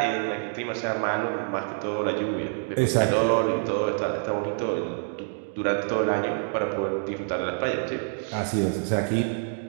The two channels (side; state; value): left; silent; 58 dB below the other